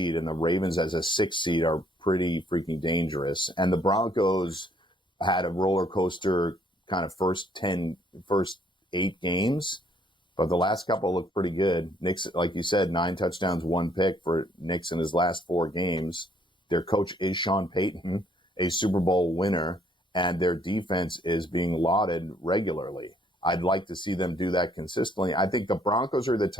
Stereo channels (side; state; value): both; normal; correlation 0.65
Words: and the Ravens as a 6 seed are pretty freaking dangerous. And the Broncos had a roller coaster kind of first 8 games, but the last couple looked pretty good. Nick's, like you said, 9 touchdowns, 1 pick for Nick's in his last 4 games. Their coach is Sean Payton, a Super Bowl winner, and their defense is being lauded regularly. I'd like to see them do that consistently. I think the Broncos are the